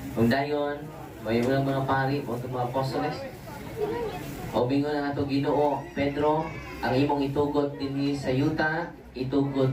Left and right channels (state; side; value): identical; both; correlation 1.00